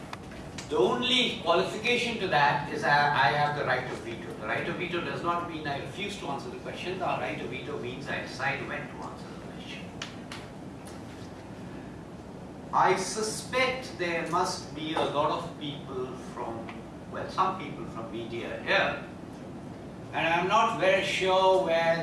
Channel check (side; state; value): both; identical; correlation 1.00